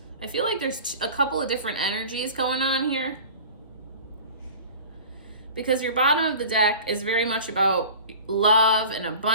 I feel like there's a couple of different energies going on here. Because your bottom of the deck is very much about love and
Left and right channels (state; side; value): inverted; both; correlation -0.40